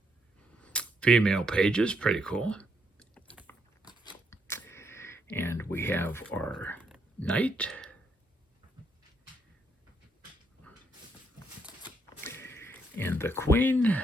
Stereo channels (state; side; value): normal; both; correlation 0.75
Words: Female pages, pretty cool. And we have our knight. And the queen.